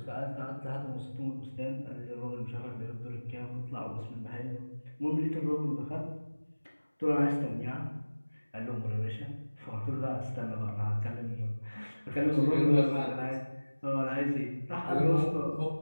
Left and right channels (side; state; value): both; inverted; correlation -1.00